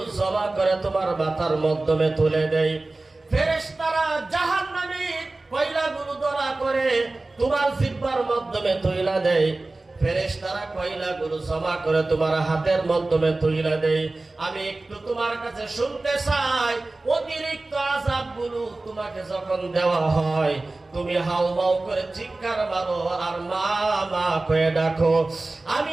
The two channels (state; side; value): quieter; left; 3.1 dB